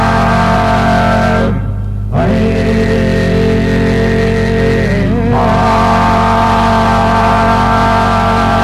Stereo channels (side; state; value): both; identical; correlation 1.00